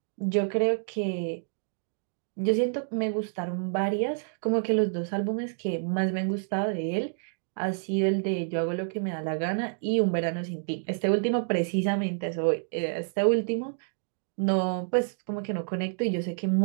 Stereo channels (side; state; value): left; silent; digital silence